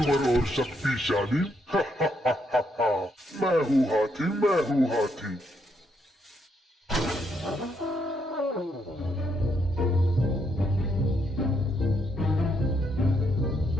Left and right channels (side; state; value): both; normal; correlation 0.76